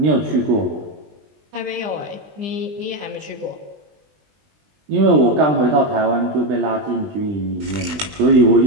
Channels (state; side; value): late; left; 20 ms